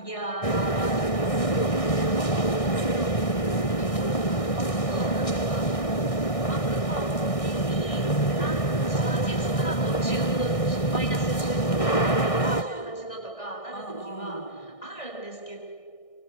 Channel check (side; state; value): right; late; 1.6 ms